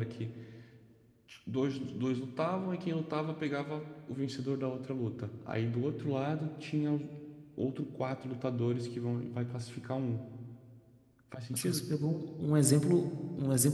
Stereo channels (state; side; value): identical; both; correlation 1.00